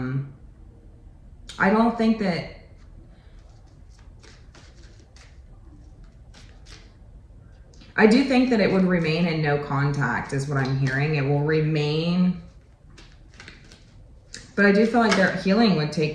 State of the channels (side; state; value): both; identical; correlation 1.00